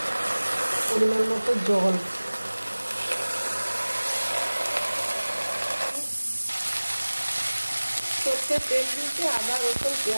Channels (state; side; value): inverted; both; correlation -1.00